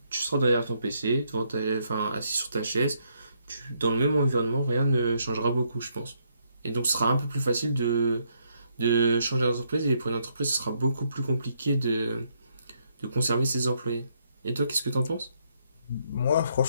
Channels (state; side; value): inverted; both; correlation -0.74